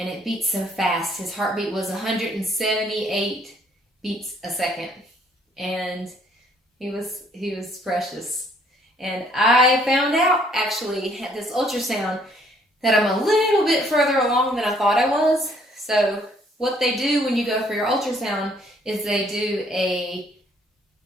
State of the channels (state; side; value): normal; both; correlation 0.63